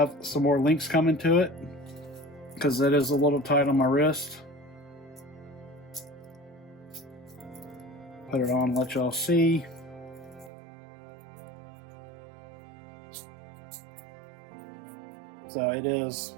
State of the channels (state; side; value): drops out; left; at 10.5 s